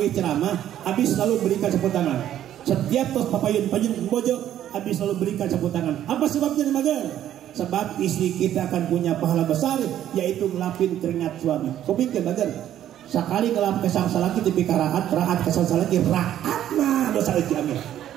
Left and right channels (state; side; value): quieter; left; 11.4 dB